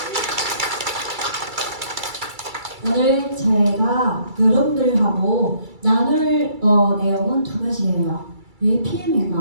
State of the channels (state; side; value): late; left; 2.3 ms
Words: 오늘 제가 여러분들하고 나눌 내용은 두 가지예요. 왜